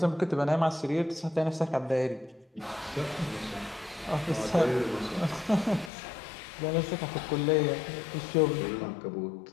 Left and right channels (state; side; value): drops out; right; at 5.9 s